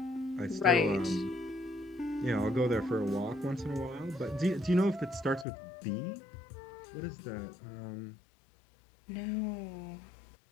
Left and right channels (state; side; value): drops out; right; at 5.5 s